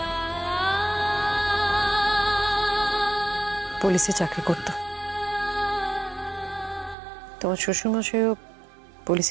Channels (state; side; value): drops out; left; at 7.0 s